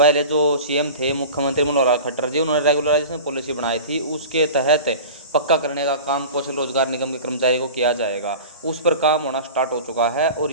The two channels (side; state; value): both; inverted; correlation -0.36